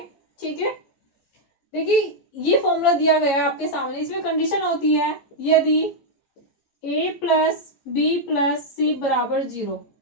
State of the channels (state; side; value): late; right; 14 ms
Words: ठीक है। देखिए ये फॉर्मूला दिया गया है आपके सामने, इसमें कंडीशन होती है यदि a प्लस बी प्लस सी बराबर 0।